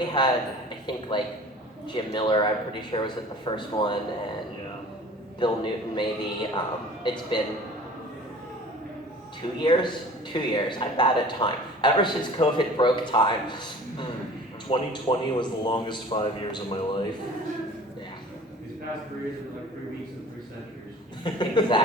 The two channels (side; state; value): both; normal; correlation 0.45